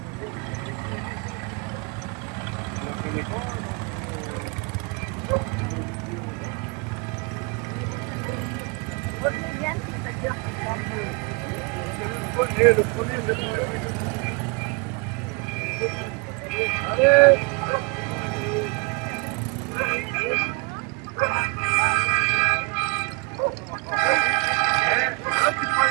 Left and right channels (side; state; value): left; quieter; 31.4 dB